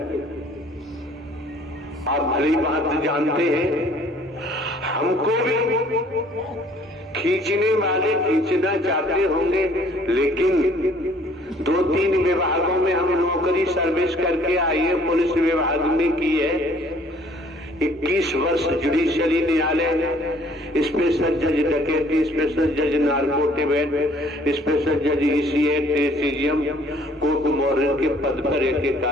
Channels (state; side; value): normal; both; correlation 0.58